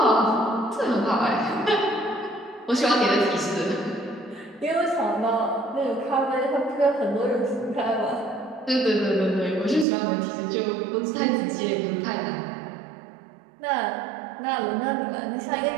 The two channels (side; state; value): left; drops out; at 9.9 s